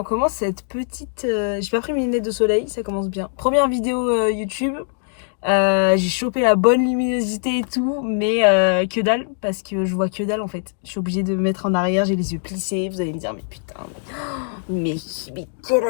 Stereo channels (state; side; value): silent; right; 65 dB below the other